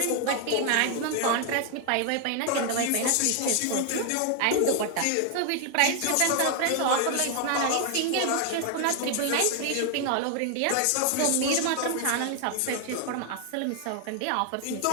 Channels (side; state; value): both; different; correlation 0.00